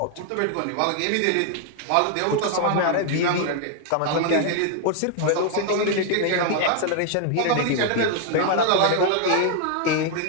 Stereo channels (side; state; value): both; different; correlation 0.00